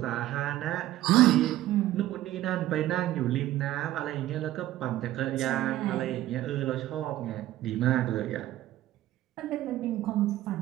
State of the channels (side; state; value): left; quieter; 14.5 dB